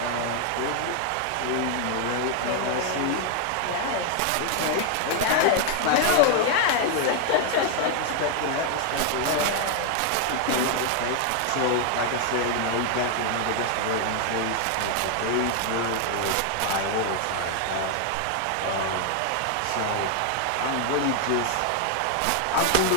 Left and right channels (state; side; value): different; both; correlation 0.00